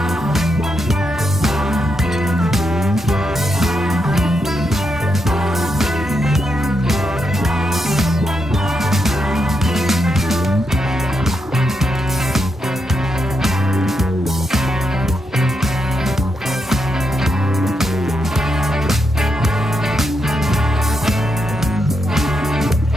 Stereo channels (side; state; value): both; normal; correlation 0.83